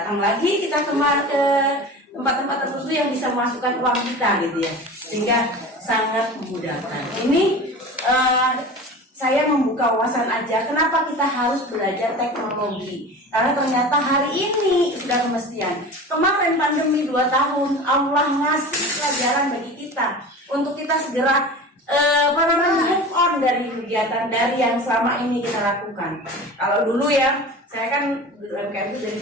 lagi kita ke tempat-tempat tertentu yang bisa memasukkan uang kita gitu ya, sehingga sangat memudahkan. Ini saya membuka wawasan aja, kenapa kita harus belajar teknologi? Karena ternyata hari ini sudah kemestian. Kemarin pandemi 2 tahun, Allah ngasih pelajaran bagi kita untuk kita segera move on dari kegiatan dari yang selama ini kita lakukan. Kalau dulu ya, saya kan UMKM itu dari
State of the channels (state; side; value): normal; both; correlation 0.35